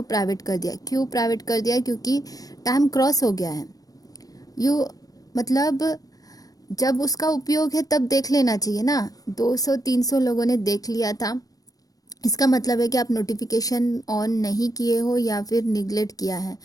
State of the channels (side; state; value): right; late; 0.18 ms